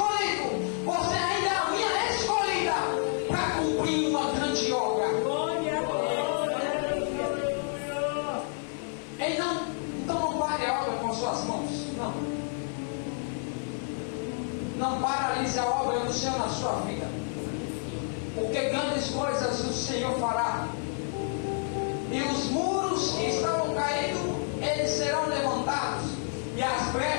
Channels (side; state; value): right; silent; 58 dB below the other